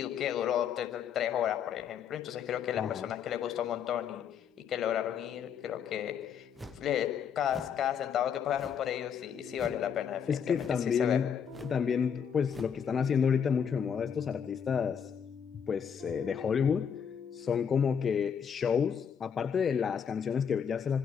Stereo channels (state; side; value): quieter; right; 7.6 dB